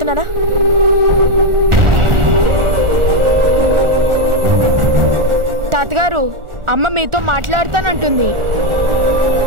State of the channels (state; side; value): late; left; 1.4 ms